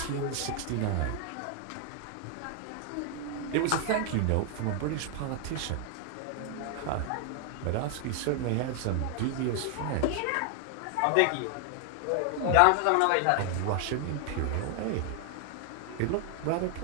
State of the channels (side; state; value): both; different; correlation 0.00